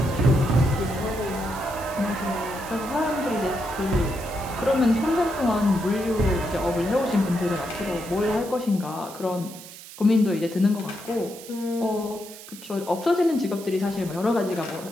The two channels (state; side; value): noise; right; hiss, 16 dB below the sound